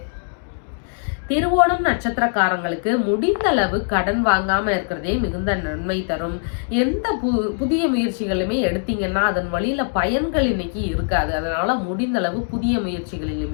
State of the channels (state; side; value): silent; right; 62 dB below the other